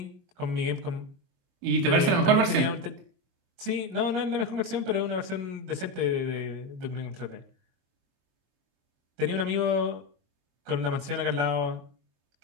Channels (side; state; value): left; late; 22 ms